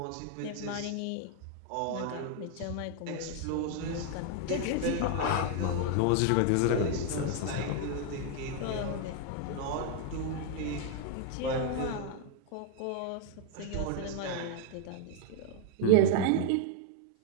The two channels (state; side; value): different; both; correlation 0.00